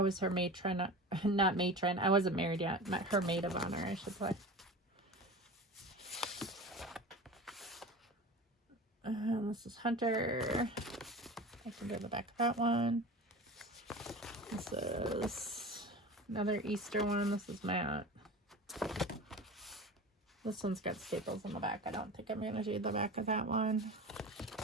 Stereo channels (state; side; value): normal; both; correlation 0.33